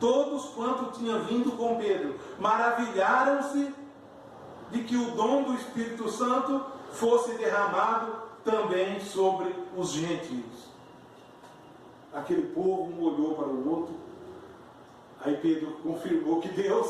quanto tinham vindo com Pedro, maravilharam-se de que o dom do Espírito Santo fosse derramado também sobre os gentios. Aquele povo um olhou para o outro. Aí Pedro confirmou que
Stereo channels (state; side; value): identical; both; correlation 1.00